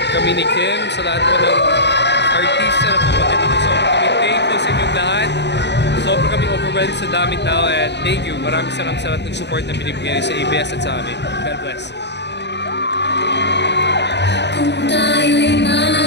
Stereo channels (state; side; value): late; right; 0.50 ms